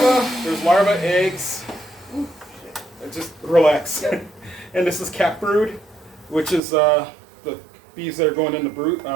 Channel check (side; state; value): left; drops out; at 6.6 s